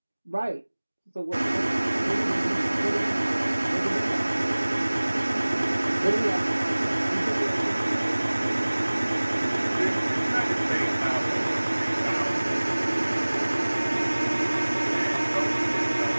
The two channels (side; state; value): both; inverted; correlation -1.00